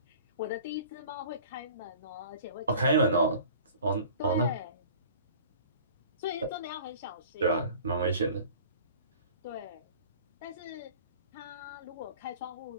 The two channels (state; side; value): inverted; both; correlation -0.45